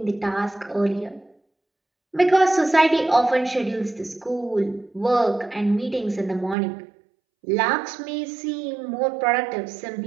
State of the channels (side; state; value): left; drops out; at 6.6 s